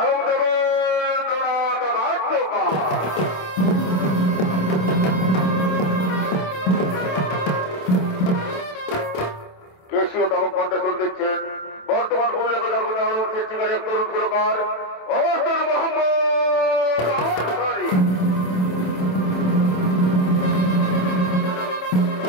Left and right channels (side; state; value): right; late; 27 ms